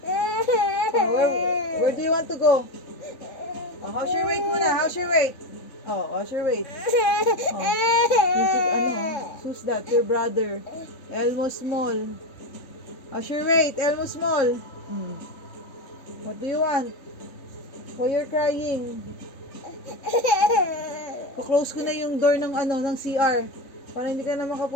Oh, where do you want to go? Oh, how's your weight muna? How's your weight? Oh, how's your weight? Oh, who's that? Your brother. Elmo Small. How's your weight? Elmo Small. What do you want? Why you're crying? Close ko na yung door ng ng CR para hindi ka na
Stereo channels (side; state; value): right; late; 3.9 ms